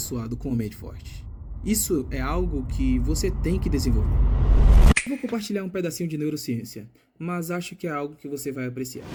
com uma mente forte? Isso é algo que você tem que desenvolver. Eu vou compartilhar um pedacinho de neurociência, mas acho que é algo que você vai apreciar.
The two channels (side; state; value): both; identical; correlation 1.00